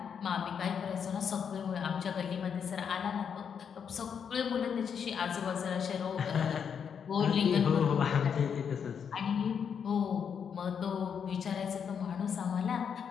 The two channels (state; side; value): quieter; right; 7.3 dB